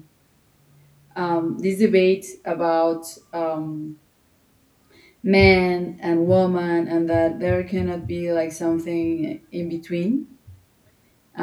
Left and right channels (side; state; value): both; identical; correlation 1.00